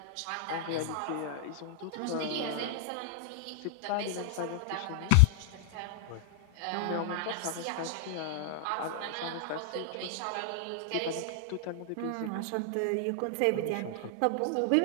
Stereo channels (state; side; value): different; both; correlation 0.00